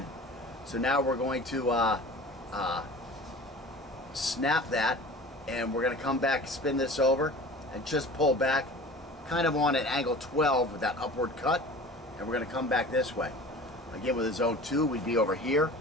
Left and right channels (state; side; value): normal; both; correlation 0.40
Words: So now we're going to snap that, and we're going to come back, spin this over, and just pull back kind of on an angle 12 with that upward cut, and we're going to come back this way. Again, with a zone 2, we'd be over here,